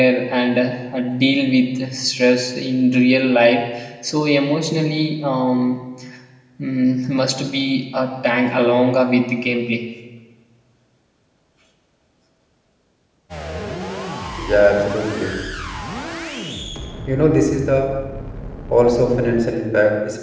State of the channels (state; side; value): identical; both; correlation 1.00